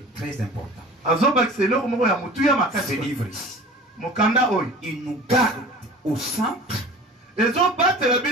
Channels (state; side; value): normal; both; correlation 0.41